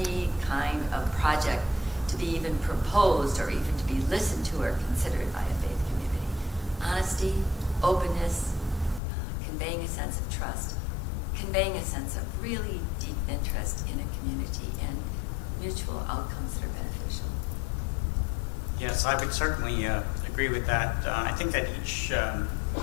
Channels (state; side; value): drops out; right; at 9.0 s